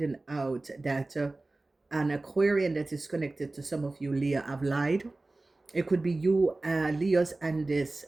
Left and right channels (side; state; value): left; quieter; 3.1 dB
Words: out that an Aquarian that is connected to some of you Leo have lied. It could be you, Leos, and this